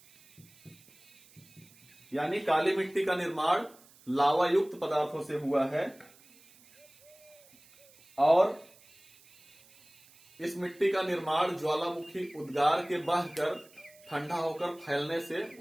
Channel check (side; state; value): right; noise; hiss, 26 dB below the sound